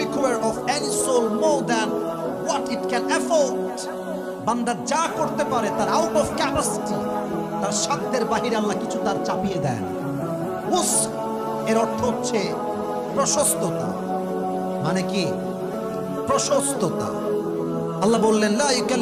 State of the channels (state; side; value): identical; both; correlation 1.00